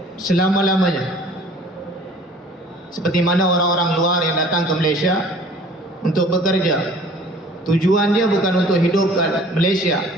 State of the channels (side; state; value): both; normal; correlation 0.50